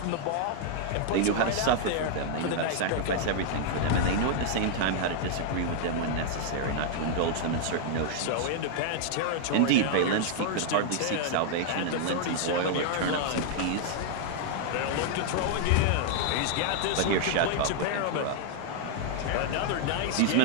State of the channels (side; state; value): both; different; correlation 0.00